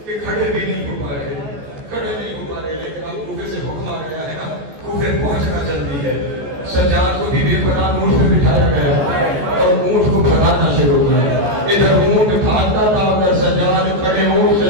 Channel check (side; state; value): left; late; 14 ms